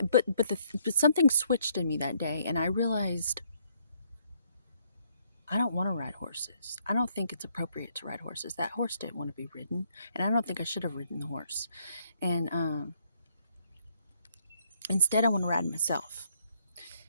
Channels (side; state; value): both; inverted; correlation -0.69